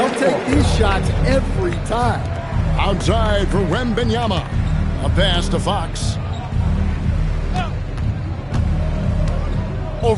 take these shots every time. Outside for Wembanyama. A pass to Fox.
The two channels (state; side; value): identical; both; correlation 1.00